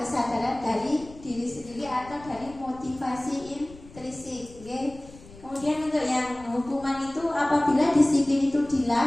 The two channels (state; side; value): noise; left; rumble, 20 dB below the sound